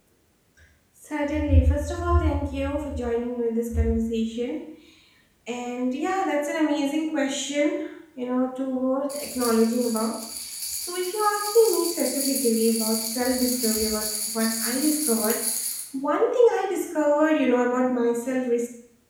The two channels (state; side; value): identical; both; correlation 1.00